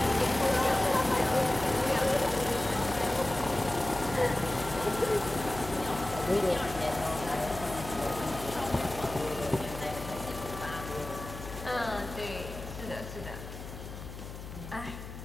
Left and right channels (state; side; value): noise; left; hum, 11 dB below the sound